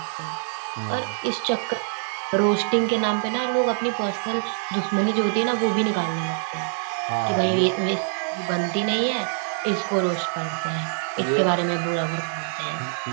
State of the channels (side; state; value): left; silent; digital silence